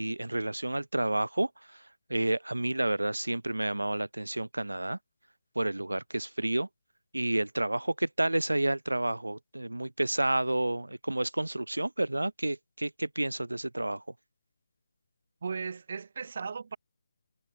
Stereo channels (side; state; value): both; inverted; correlation -1.00